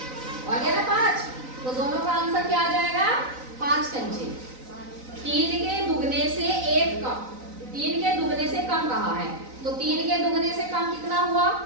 और क्या ना 5, तो दोनों का आंसर क्या आ जाएगा 5 कंचे। 3 के दुगने से 1 कम, 3 के दुगने से कम कहा है, तो 3 के दुगने से कम कितना हुआ,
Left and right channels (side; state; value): left; late; 3.9 ms